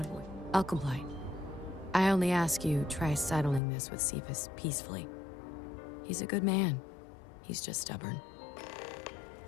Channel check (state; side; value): drops out; right; at 3.6 s